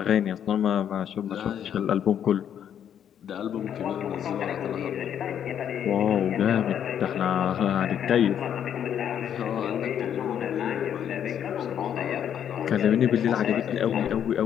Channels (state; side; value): quieter; right; 9.3 dB